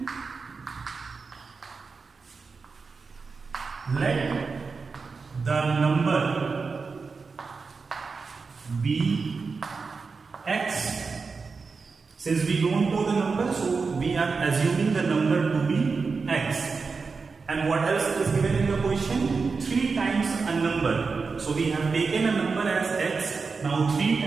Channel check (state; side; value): quieter; left; 4.7 dB